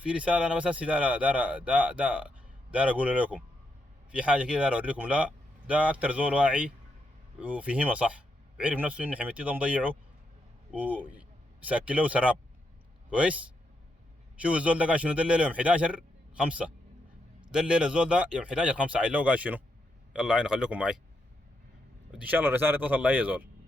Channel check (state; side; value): normal; both; correlation 0.81